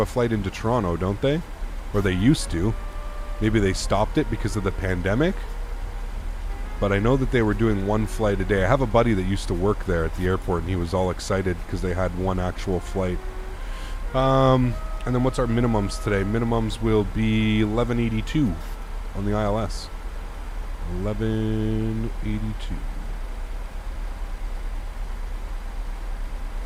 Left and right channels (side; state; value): both; identical; correlation 1.00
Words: flight into Toronto, don't they? or they used to. Maybe they stopped it because of the pandemic. But I know that they were doing one flight a day. I have a buddy that used to work there at the airport, and he was all excited because they had one actual flight. And then what's our minimums today? Minimums will be 1182 on the ILS. 1182.